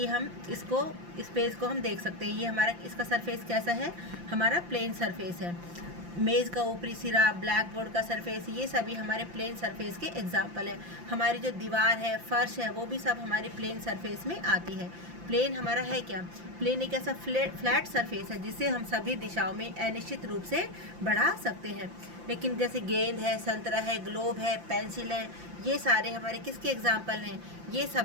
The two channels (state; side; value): late; left; 5.8 ms